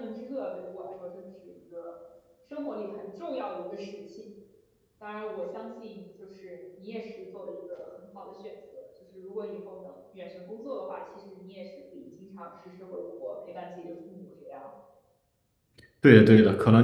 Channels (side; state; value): both; identical; correlation 1.00